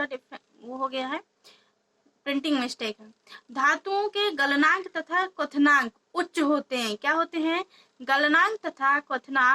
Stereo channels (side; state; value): both; identical; correlation 1.00